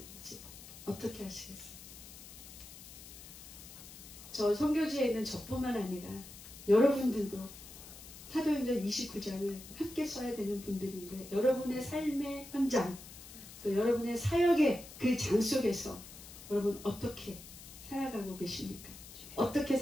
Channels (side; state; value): left; noise; hiss, 15 dB below the sound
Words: 어떻게 하시겠어요? 저 선교지에 있는 저뿐만 아니라 여러분들도 사도행전 29장을 함께 써야 되는 분들인데 여러분의 삶의 현장 또 여러분의 사역의 그 장 속에서 여러분 어떻게 살아가고 계십니까? 어떻게